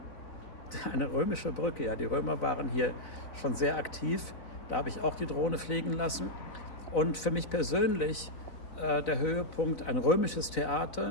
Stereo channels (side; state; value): right; late; 4.0 ms